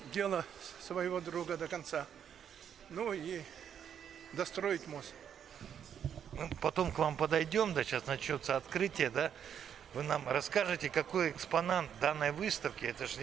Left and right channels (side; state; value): left; quieter; 8.6 dB